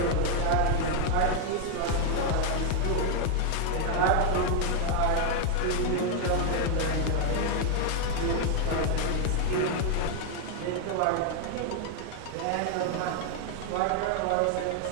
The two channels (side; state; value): both; different; correlation 0.01